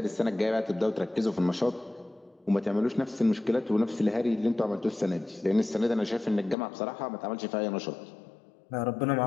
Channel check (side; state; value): right; drops out; at 6.6 s